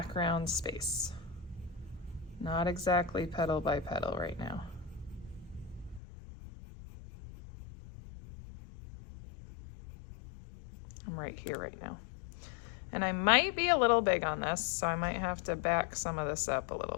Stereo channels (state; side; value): drops out; right; at 6.0 s